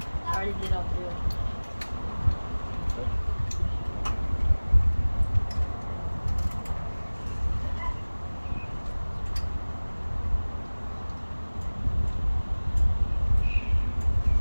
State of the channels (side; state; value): both; inverted; correlation -1.00